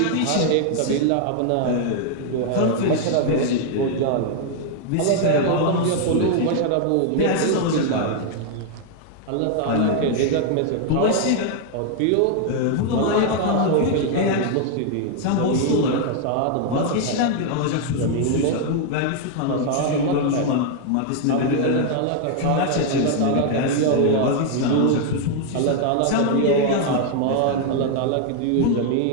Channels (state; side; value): different; both; correlation 0.00